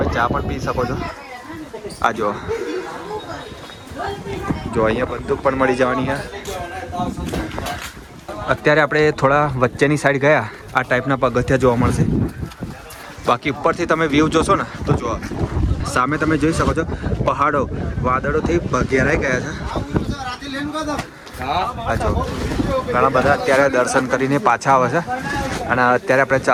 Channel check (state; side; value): identical; both; correlation 1.00